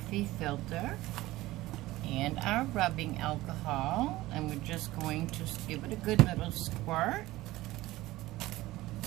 filter and our rubbing alcohol, and we're just going to give it a good little squirt.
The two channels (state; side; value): quieter; left; 17.6 dB